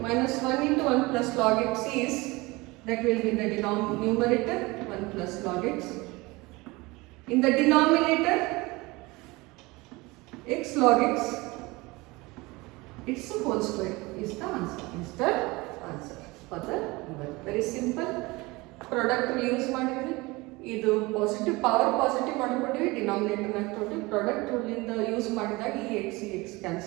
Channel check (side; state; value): left; quieter; 23.0 dB